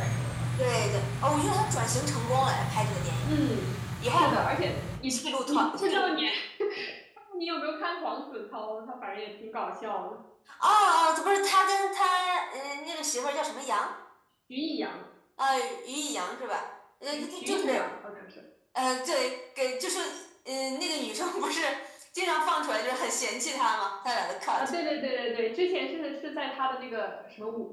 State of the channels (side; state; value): both; identical; correlation 1.00